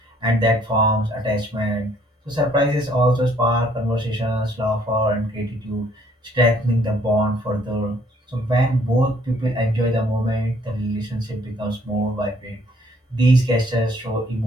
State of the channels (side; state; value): both; normal; correlation 0.63